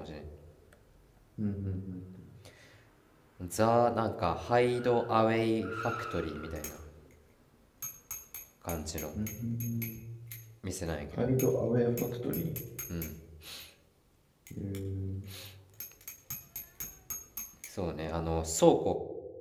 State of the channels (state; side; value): identical; both; correlation 1.00